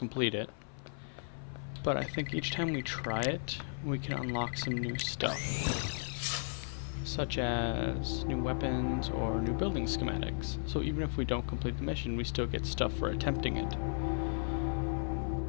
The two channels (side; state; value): right; silent; 54 dB below the other